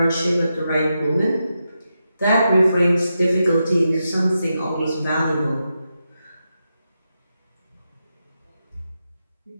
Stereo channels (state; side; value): inverted; both; correlation -0.87